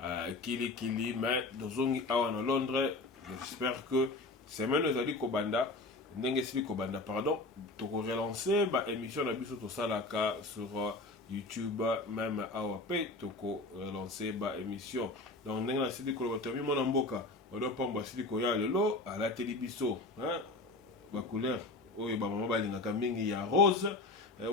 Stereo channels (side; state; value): right; quieter; 3.1 dB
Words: Kili, mais Dozongi awa na Londres. J'espère que semaine ezali kobanda ndenge sili kobanda pardon toko relancer ba émission na biso to salaka sur YouTube même awa pe toko relancer ba émission donc ndenge na sili koloba to mi mona mboka odo pamba sili ko ya lelo à la télévision hein ba couleur oyo ba mama balinga mingi ya rose